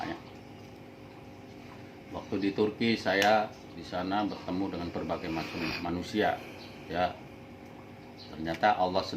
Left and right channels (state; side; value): identical; both; correlation 1.00